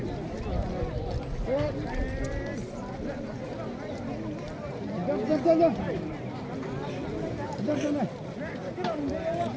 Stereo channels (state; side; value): identical; both; correlation 1.00